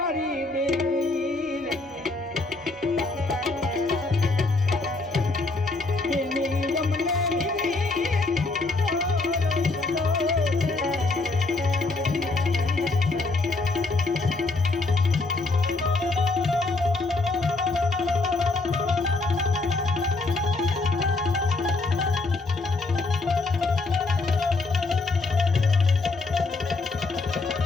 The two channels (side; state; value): right; quieter; 3.5 dB